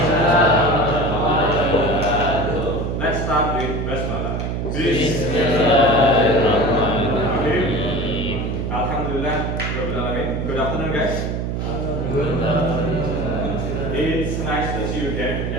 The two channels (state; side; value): noise; right; hum, 2 dB below the sound